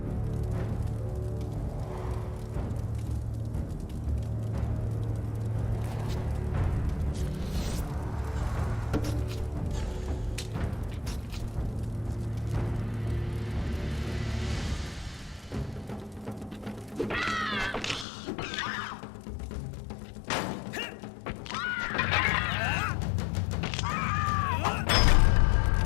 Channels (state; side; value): drops out; right; at 18.1 s